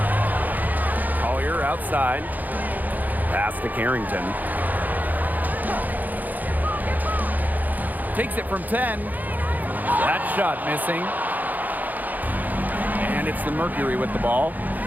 Collier outside. Pass to Carrington. Takes it from 10. That shot missing. And it's the Mercury with the ball.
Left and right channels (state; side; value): late; left; 0.083 ms